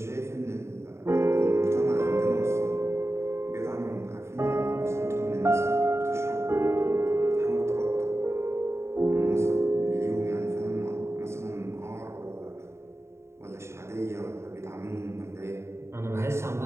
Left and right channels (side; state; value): left; late; 0.13 ms